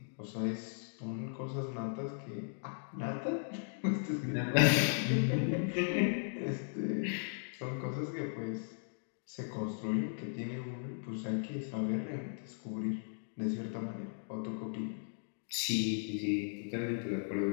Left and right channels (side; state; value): right; silent; digital silence